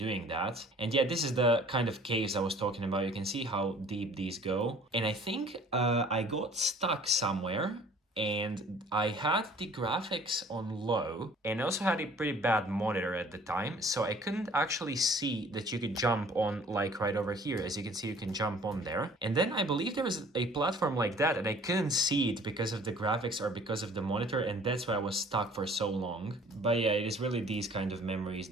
that. And yeah, this is the kind of caves I was talking about. You can see how deep these go. And I think I got stuck somewhere, and I had the graphics on low and also had a pretty bad monitor at the time, so I couldn't actually see that you could jump on, like right over here. As you can see, you can jump on there, and then I believe there was a platform like that and I couldn't see it because of the graphics or because of the monitor, and that's why I was stuck for so long. But yeah, it is really these kind of memories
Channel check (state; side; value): normal; both; correlation 0.52